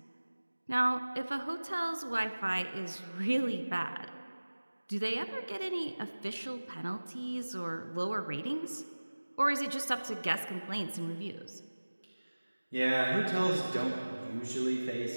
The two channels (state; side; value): inverted; both; correlation -1.00